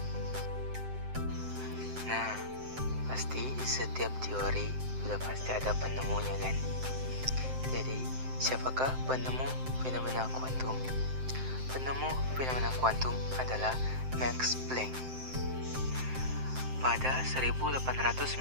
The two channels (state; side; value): late; left; 7.7 ms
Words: Nah, pasti setiap teori sudah pasti ada penemunya kan? Jadi, siapakah penemu fenomena kuantum? Penemu fenomena kuantum adalah Max Planck. Pada 1899,